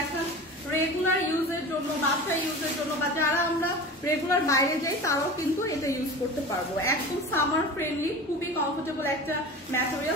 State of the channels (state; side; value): normal; both; correlation 0.34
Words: রেগুলার ইউজের জন্য, বাচ্চা ইউজের জন্য, বা যারা আমরা রেগুলার বাইরে যাই তারাও কিন্তু এটা ইউজ করতে পারবো। একদম সামার ফ্রেন্ডলি, খুবই কমফোর্টেবল একটা